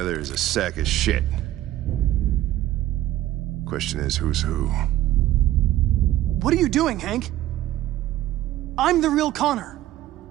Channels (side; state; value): left; quieter; 14.3 dB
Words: is a sack of shit. Question is, who's who? What are you doing, Hank? I'm the real Connor.